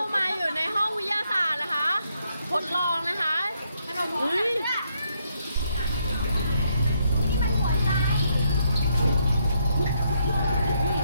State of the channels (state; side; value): inverted; both; correlation -0.75